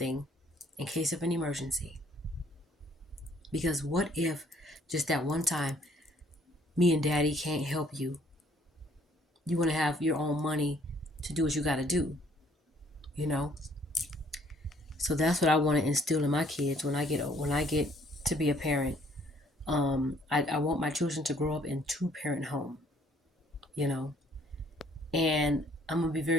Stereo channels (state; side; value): normal; both; correlation 0.62